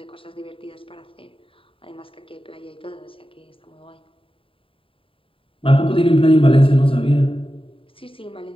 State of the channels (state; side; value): late; right; 0.26 ms